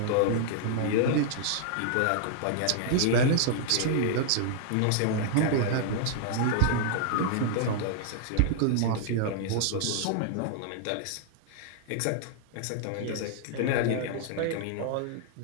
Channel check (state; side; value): different; both; correlation -0.01